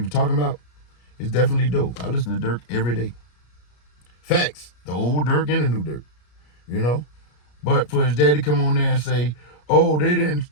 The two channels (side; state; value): right; late; 33 ms